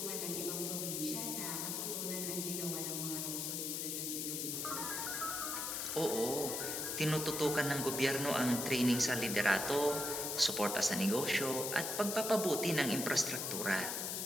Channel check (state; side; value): noise; left; hiss, 2 dB below the sound